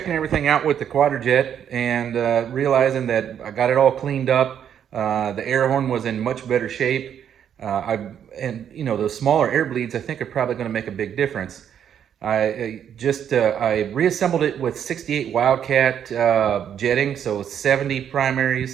everything out with the QJet and realizing that I got it all cleaned up, the air horn was in much better shape. You know, those smaller air bleeds I think are probably going to make a big difference. I reassembled it with 68 Wildcat jetting, so 70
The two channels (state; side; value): quieter; left; 9.0 dB